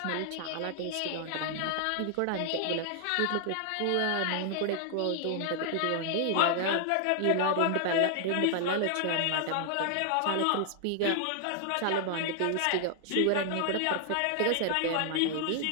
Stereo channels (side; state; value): both; different; correlation 0.00